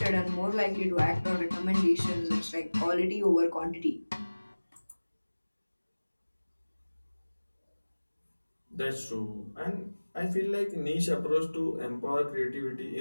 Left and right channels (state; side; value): inverted; both; correlation -1.00